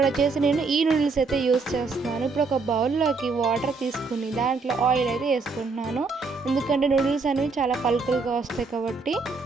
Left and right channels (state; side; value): quieter; left; 4.2 dB